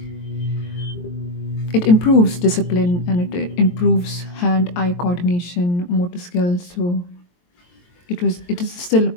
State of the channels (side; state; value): right; late; 23 ms